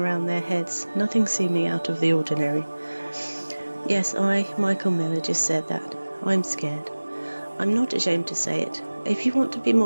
their heads, nothing seeming out of the ordinary. Yes, I, Michael Miller, just said that. I'm scared. I'm not ashamed to say it. If you want to be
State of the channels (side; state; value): both; inverted; correlation -1.00